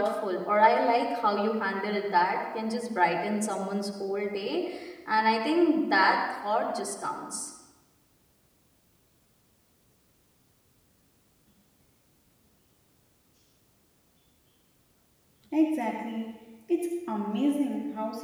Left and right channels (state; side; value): identical; both; correlation 1.00